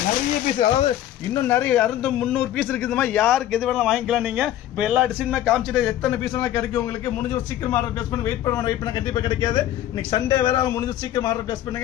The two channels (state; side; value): quieter; right; 12.6 dB